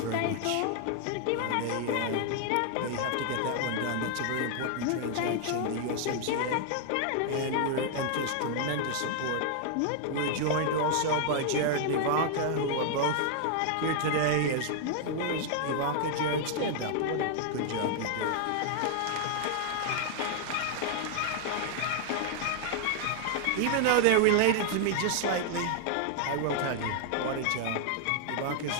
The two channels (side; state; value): both; different; correlation 0.00